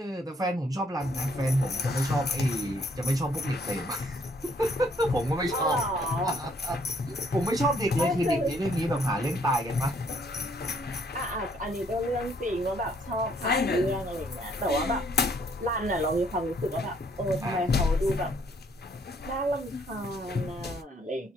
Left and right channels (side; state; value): both; normal; correlation 0.66